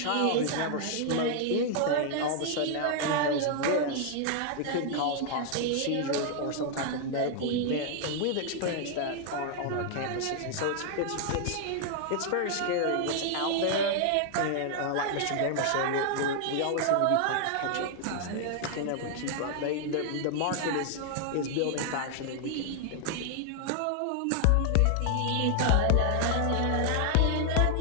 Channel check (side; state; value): both; different; correlation 0.00